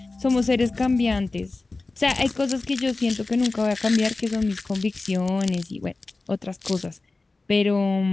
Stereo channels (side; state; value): right; quieter; 3.4 dB